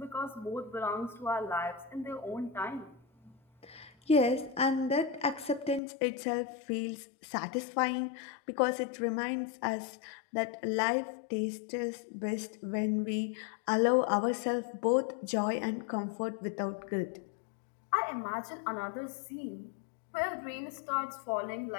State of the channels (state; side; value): drops out; right; at 5.8 s